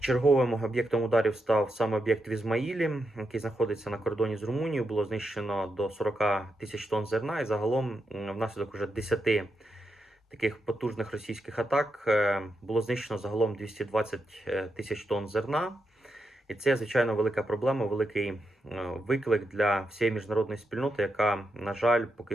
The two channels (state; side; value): normal; both; correlation 0.85